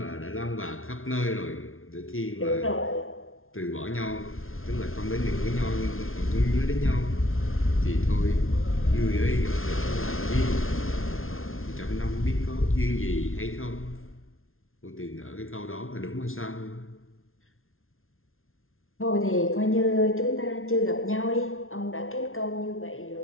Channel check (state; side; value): late; right; 0.61 ms